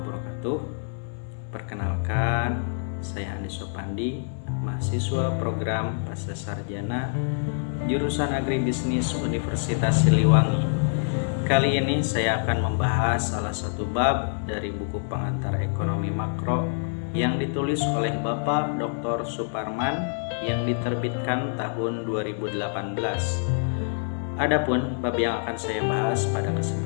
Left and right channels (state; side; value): silent; right; 61 dB below the other